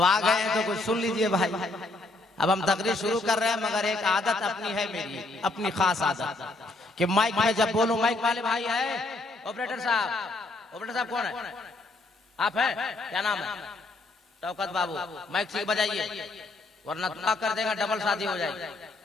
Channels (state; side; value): quieter; right; 3.0 dB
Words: आ गए तो कुछ सुन लीजिए भाई। अब हम तकरीर शुरू कर रहे हैं, मगर एक आदत अपनी है मेरी, अपनी खास आदत कि माइक में जब बोलूं, माइक वाले भाई है, ऑपरेटर साहब कौन है? आप हैं? क्या नाम है? शौकत बाबू, माइक ठीक बजाइए, वरना दुआ कर देगा, डबल शादी हो जाएगी।